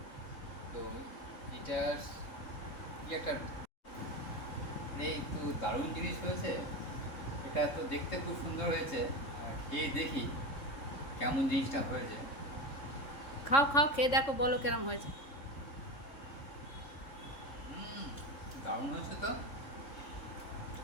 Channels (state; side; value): late; right; 3.6 ms